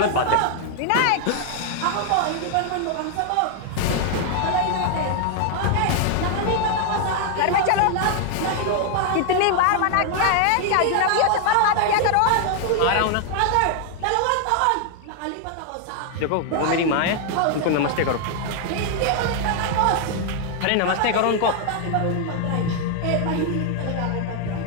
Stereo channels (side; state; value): both; different; correlation 0.00